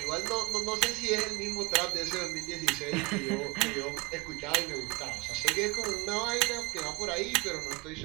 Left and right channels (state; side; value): quieter; left; 26.8 dB